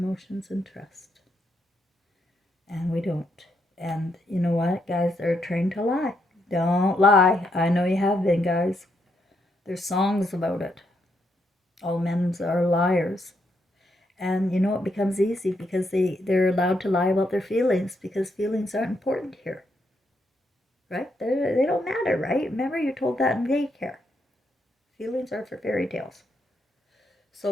and trust. And we don't. And you know what, guys? They're trained to lie. Don't lie. I know you have been, guys. There's songs about it. All men are liars. And it becomes easy because they're allowed to lie about their feelings because feelings aren't important here. Right? They don't matter, right? Remember you told that in daycare. Feelings are for fairy tales.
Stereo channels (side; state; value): both; normal; correlation 0.78